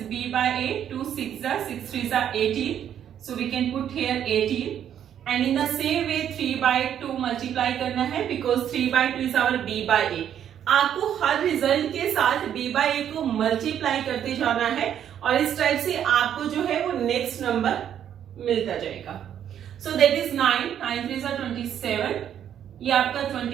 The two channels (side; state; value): left; quieter; 9.7 dB